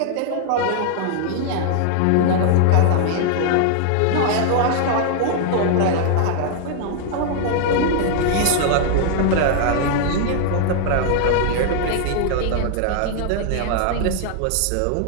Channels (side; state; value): both; different; correlation 0.00